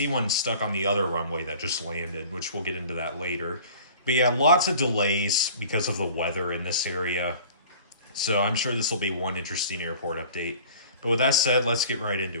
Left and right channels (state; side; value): inverted; both; correlation -0.46